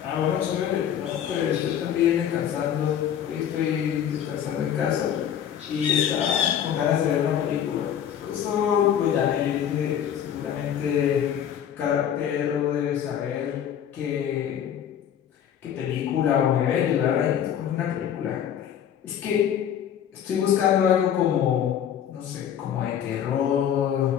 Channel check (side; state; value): right; quieter; 9.4 dB